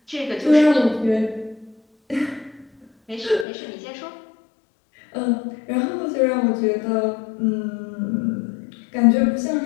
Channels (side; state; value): right; drops out; at 3.5 s